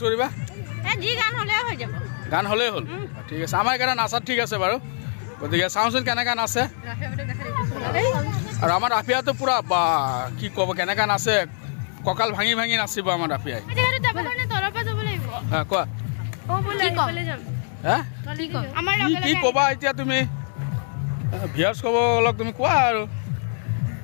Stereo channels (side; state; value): right; silent; 63 dB below the other